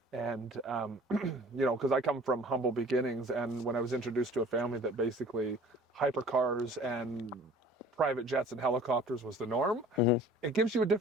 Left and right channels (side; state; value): both; normal; correlation 0.48